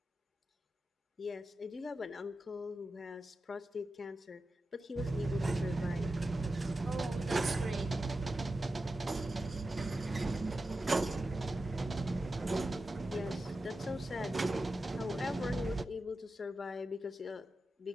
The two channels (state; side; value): normal; both; correlation 0.91